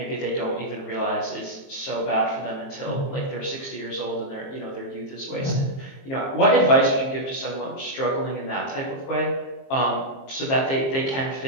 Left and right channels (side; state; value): right; late; 22 ms